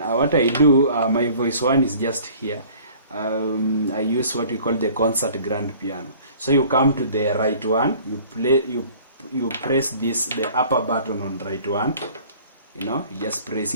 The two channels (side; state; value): both; inverted; correlation -0.50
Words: I do, my voice one is just here. I use what we call the concert grand piano. So you come to the right one, you press the upper button on right one. You just press